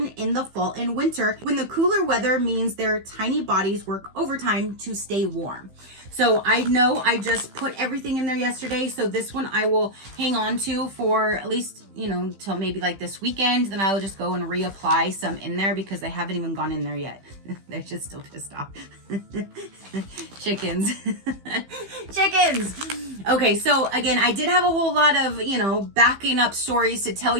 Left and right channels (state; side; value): late; left; 15 ms